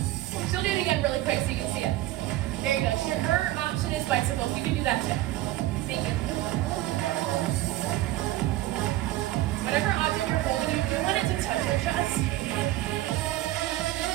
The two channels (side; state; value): left; quieter; 15.7 dB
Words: She'll do it again really quick so you can see it. There you go. Her option is bicycles. You can do that too. Thank you. Whatever object you're holding, you do want it to touch your chest.